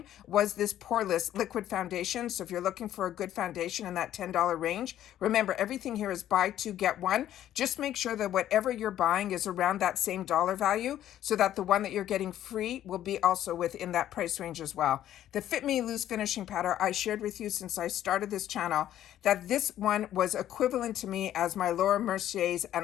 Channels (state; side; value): quieter; right; 11.9 dB